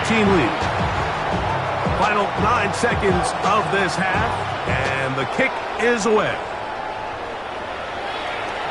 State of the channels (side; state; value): both; identical; correlation 1.00